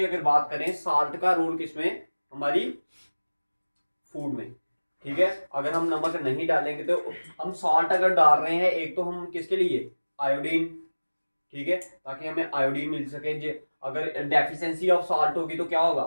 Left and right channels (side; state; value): both; inverted; correlation -1.00